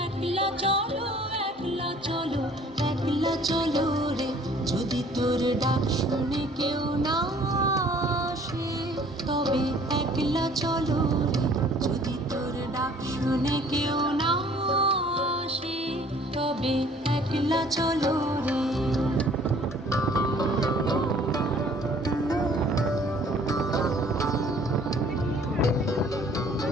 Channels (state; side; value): normal; both; correlation 0.55